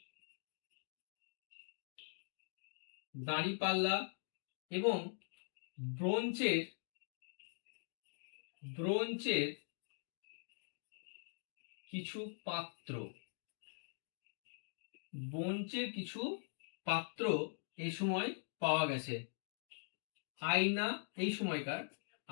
এবং ব্রোঞ্জের কিছু পাত্র, ব্রোঞ্জের কিছু পাত্র এই সময় পাওয়া গেছে। আয়না, এই সময়কার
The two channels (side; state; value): right; silent; digital silence